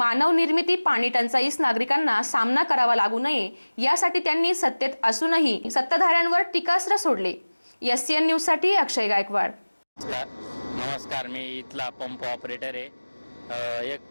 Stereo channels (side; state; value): both; inverted; correlation -1.00